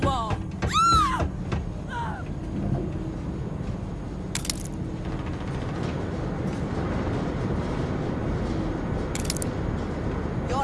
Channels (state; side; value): identical; both; correlation 1.00